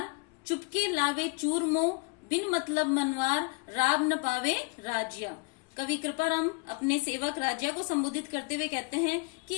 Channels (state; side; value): quieter; right; 29.0 dB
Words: चुपके लावे चूरमो, बिन मतलब मनवार, राब न पावे राजिया। कवि कृपाराम अपने सेवक राजिया को संबोधित करते हुए कहते हैं